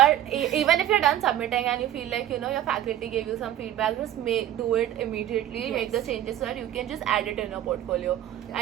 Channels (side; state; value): left; quieter; 12.1 dB